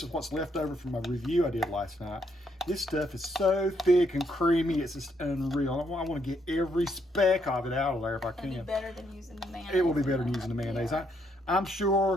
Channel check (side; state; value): both; normal; correlation 0.74